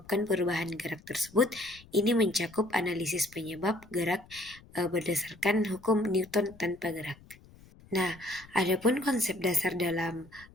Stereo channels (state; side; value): noise; left; rumble, 23 dB below the sound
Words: perubahan gerak tersebut. Ini mencakup analisis penyebab gerak berdasarkan hukum Newton tanpa gerak. Nah, adapun konsep dasar dalam